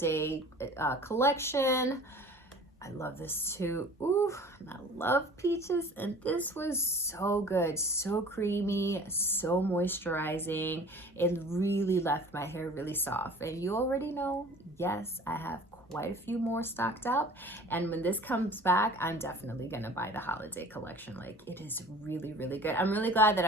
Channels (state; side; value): normal; both; correlation 0.45